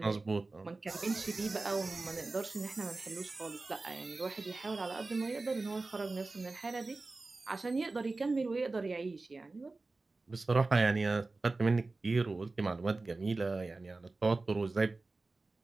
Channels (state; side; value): quieter; left; 3.4 dB